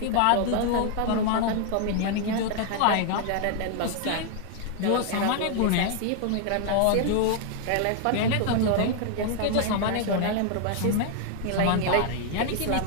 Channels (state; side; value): different; both; correlation 0.00